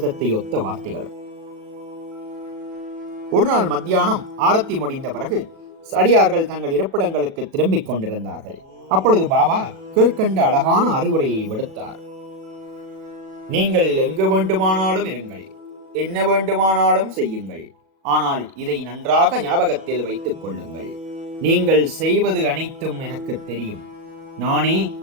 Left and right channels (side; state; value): left; late; 37 ms